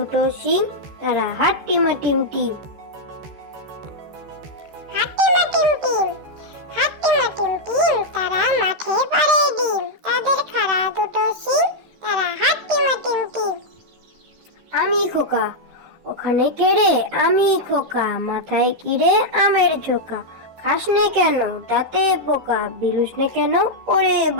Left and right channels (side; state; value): left; late; 13 ms